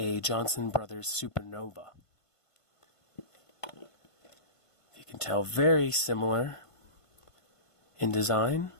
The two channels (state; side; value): late; right; 1.5 ms